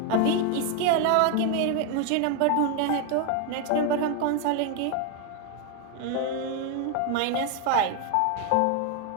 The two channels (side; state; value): both; different; correlation 0.01